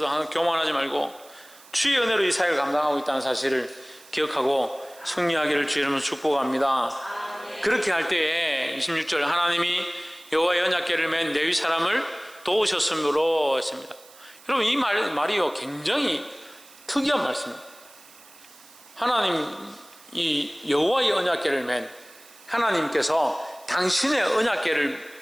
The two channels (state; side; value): noise; right; hiss, 23 dB below the sound